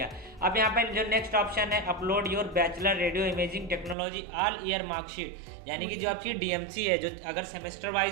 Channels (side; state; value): left; drops out; at 4.0 s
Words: अब यहाँ पे जो नेक्स्ट ऑप्शन है upload your bachelor radio imaging technology all year marksheet, यानी कि जो आपकी डीएमसी है, जो अगर सेमेस्टर